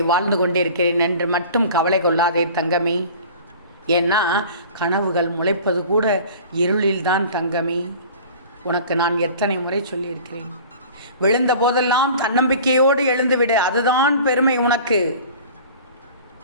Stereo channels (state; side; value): inverted; both; correlation -0.43